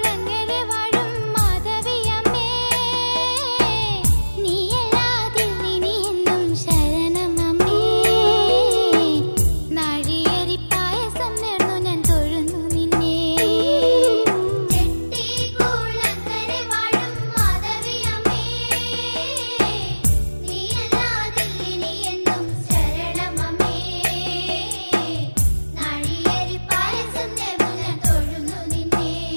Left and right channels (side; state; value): both; inverted; correlation -1.00